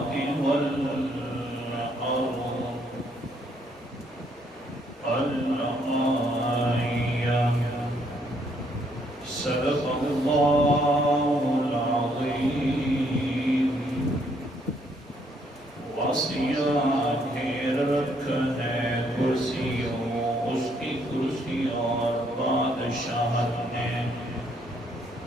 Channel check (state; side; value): normal; both; correlation 0.70